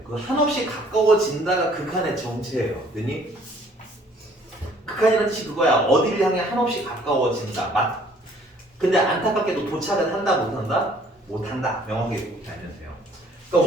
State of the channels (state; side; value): normal; both; correlation 0.58